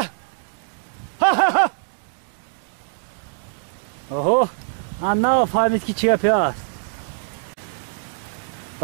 ها ها ها اوهو انا فهمید که چیه پیاست.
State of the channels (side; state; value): left; silent; digital silence